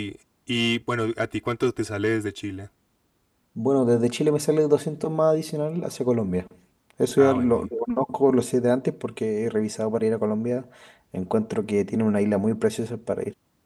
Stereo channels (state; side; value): identical; both; correlation 1.00